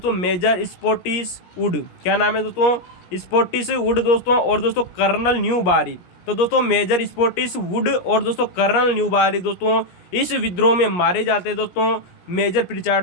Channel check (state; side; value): late; right; 17 ms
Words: मेजर स्पॉटिस वुड। क्या नाम है दोस्तों? स्पॉटिस वुड दोस्तों। और दोस्तों कर्नल न्यू बारी। तो दोस्तों मेजर स्पॉटिस वुड और दोस्तों कर्नल न्यू बारी दोस्तों इस विद्रोह में मारे जाते हैं दोस्तों। मेजर